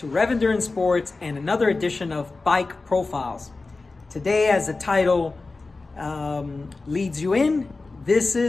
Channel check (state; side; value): quieter; right; 3.6 dB